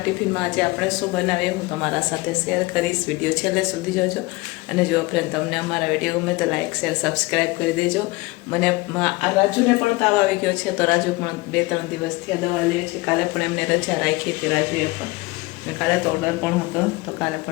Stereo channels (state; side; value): quieter; right; 22.8 dB